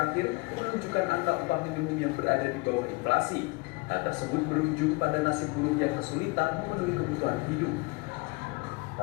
menunjukkan angka upah minimum yang berada di bawah inflasi. Hal tersebut berujung pada nasib buruh yang kesulitan memenuhi kebutuhan hidup.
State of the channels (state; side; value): quieter; right; 26.8 dB